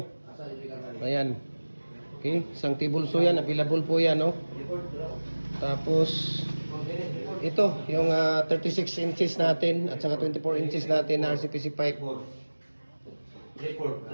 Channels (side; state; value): both; inverted; correlation -1.00